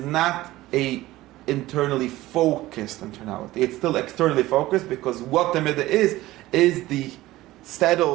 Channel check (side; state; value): left; quieter; 17.1 dB